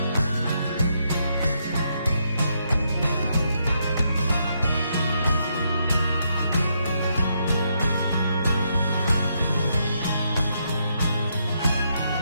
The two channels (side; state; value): both; inverted; correlation -0.77